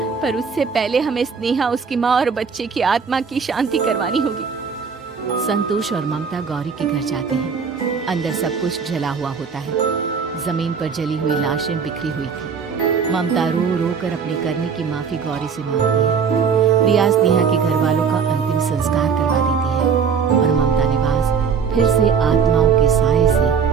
पर उससे पहले हमें स्नेहा, उसकी माँ और बच्चे की आत्मा की शांति करवानी होगी। संतोष और ममता गौरी के घर जाते हैं। अंदर सब कुछ जला हुआ होता है। जमीन पर जली हुई लाशें बिखरी हुई थी। ममता रो रो कर अपने करने की माफी गौरी से मांगती है। प्रिया स्नेहा के घर वालों का अंतिम संस्कार करवा देती है और ममता निवास फिर से आत्माओं के साए से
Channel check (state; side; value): quieter; left; 6.2 dB